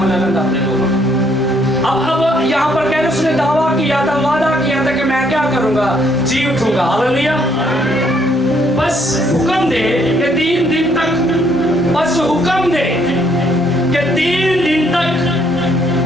लेना अपने लोगों। अब यहाँ पर कह रहे उसने दावा किया था, वादा किया था कि मैं क्या करूंगा, जी उठूंगा। हालेलुया। बस हुक्म दे कि 3 दिन तक, बस हुक्म दे कि 3 दिन तक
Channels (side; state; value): both; normal; correlation 0.68